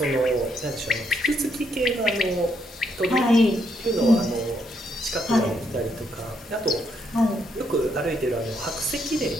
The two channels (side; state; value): both; normal; correlation 0.75